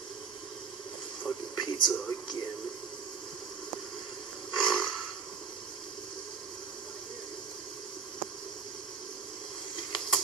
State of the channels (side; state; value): left; quieter; 5.8 dB